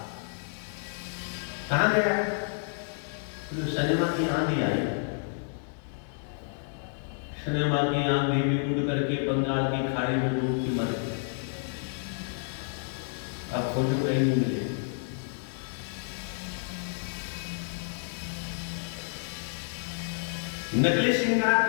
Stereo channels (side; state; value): right; silent; 58 dB below the other